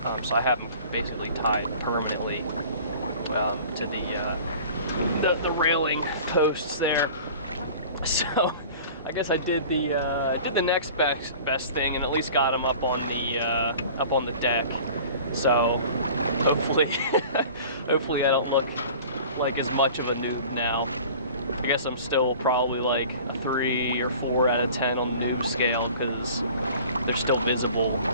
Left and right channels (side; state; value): both; inverted; correlation -0.44